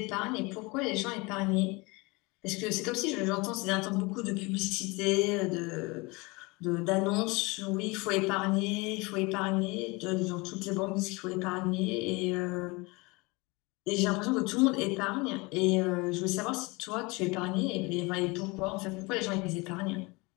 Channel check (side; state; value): right; quieter; 25.7 dB